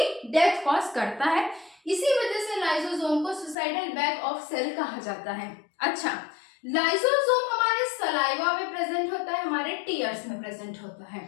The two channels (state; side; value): drops out; right; at 3.6 s